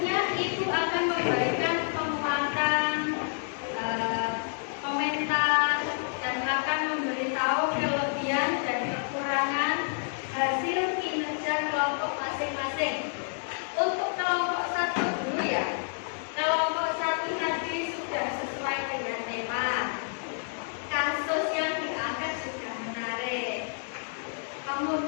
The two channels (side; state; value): right; silent; 59 dB below the other